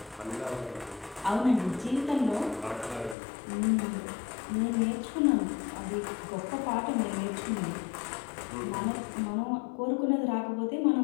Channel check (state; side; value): drops out; right; at 3.2 s